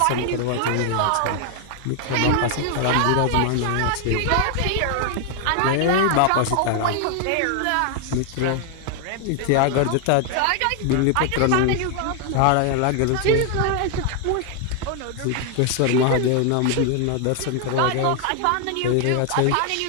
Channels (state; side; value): different; both; correlation 0.00